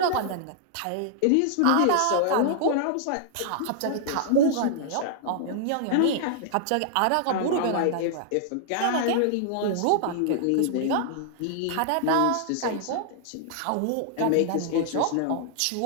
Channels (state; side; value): different; both; correlation -0.01